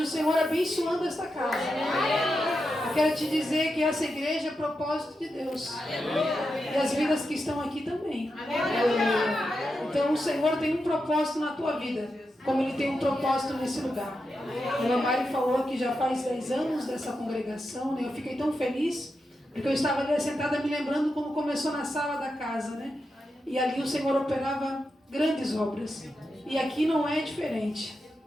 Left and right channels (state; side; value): normal; both; correlation 0.87